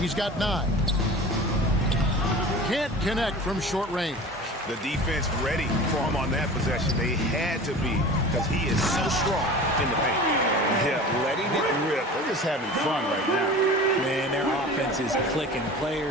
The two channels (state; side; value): normal; both; correlation 0.37